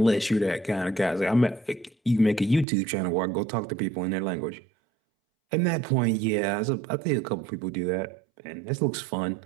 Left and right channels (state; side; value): drops out; left; at 2.7 s